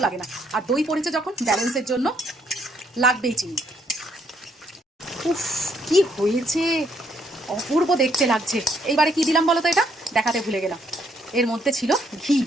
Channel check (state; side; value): normal; both; correlation 0.70